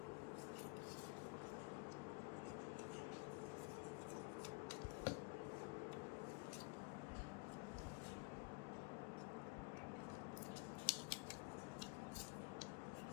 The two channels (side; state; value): right; quieter; 31.4 dB